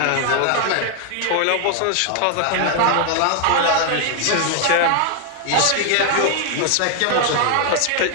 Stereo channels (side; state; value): both; different; correlation 0.00